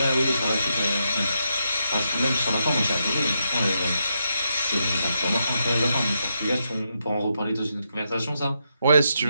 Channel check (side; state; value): both; inverted; correlation -0.82